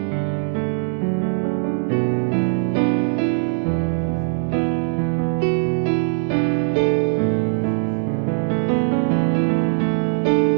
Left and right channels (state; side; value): silent; left; digital silence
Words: Bapak Ibu yang dikasih Tuhan. Kita berjumpa lagi dalam suasana ibadah dalam minggu